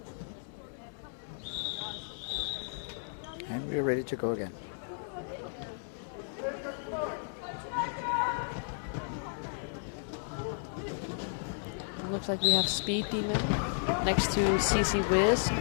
And we're ready to go again. Looks like we have Speed Demon next to CC Wiz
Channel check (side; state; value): right; silent; digital silence